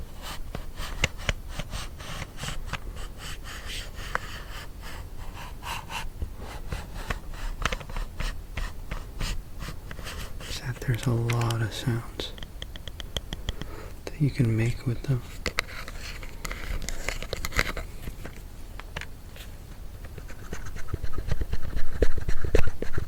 There's a lot of sounds that you can make with them.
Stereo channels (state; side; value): identical; both; correlation 1.00